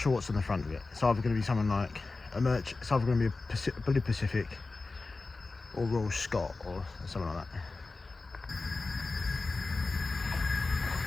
what's on the front of it. It's either going to be something like it's either going to be a Blue Pacific or Royal Scot or something like that.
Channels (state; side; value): quieter; right; 3.7 dB